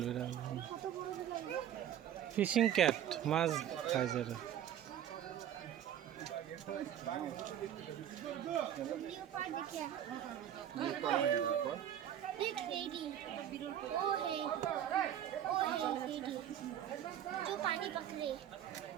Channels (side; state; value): left; quieter; 10.5 dB